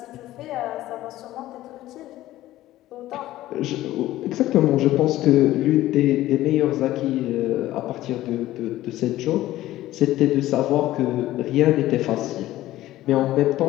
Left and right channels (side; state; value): right; quieter; 15.2 dB